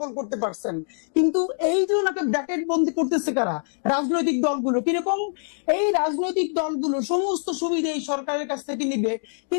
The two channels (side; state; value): right; silent; digital silence